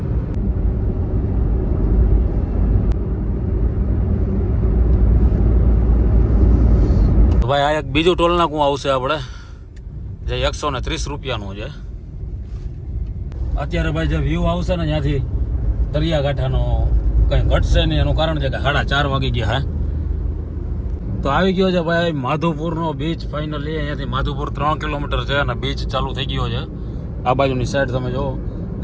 ભાઈ આ એક બીજું ટોલ નાકું આવશે આપણે જે 130 રૂપિયાનું છે. અત્યારે ભાઈ જે વ્યૂ આવશે ને ત્યાંથી દરિયાકાંઠાનો કંઈ ઘટશે નહીં. એનું કારણ છે કે 4:30 વાગી ગયા હે. તો આવી ગયો છે ભાઈ માધવપુરનો બીચ ફાઇનલી. અહીંયાથી માધવપુર 3 કિલોમીટર છે અને બીચ ચાલુ થઈ ગયો છે. આ બાજુની સાઈડ તમે જુઓ,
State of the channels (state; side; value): identical; both; correlation 1.00